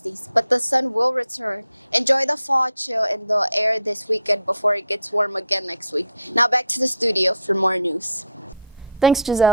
but the sun will return. Enjoy the fall chill in the air this weekend before it gets warm again next week. Now back to the studio for more news. Thanks,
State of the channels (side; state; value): both; inverted; correlation -0.64